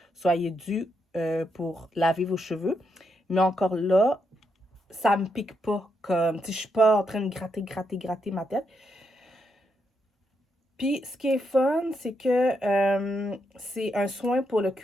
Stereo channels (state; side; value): normal; both; correlation 0.80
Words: soyez dû pour laver vos cheveux. Mais encore là, ça me pique pas comme... Tu sais, je suis pas en train de gratter ma tête. Puis, ce qui est fun, c'est que c'est un soin pour le